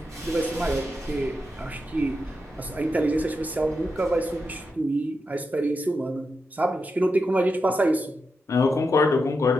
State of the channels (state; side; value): normal; both; correlation 0.87